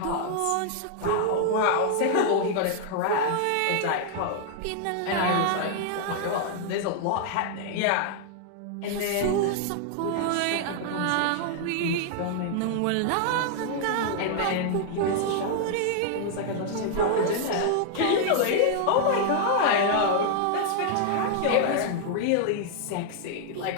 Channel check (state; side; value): different; both; correlation -0.01